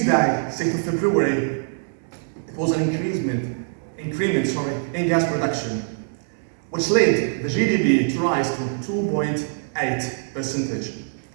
6th of February, it was an increment in gas production, which led the GDP to rise to 2.8%.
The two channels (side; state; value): left; silent; 63 dB below the other